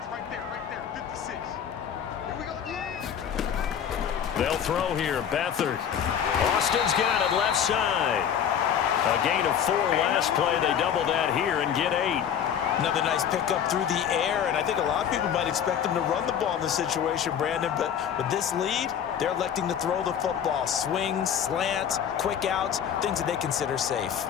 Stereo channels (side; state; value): right; quieter; 8.7 dB